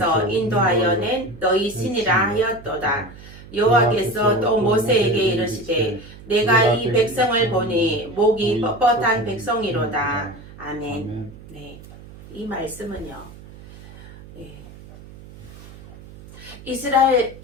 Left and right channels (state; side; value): noise; right; hum, 18 dB below the sound